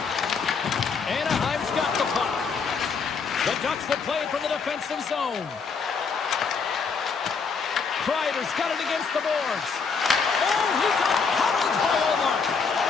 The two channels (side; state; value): right; quieter; 5.3 dB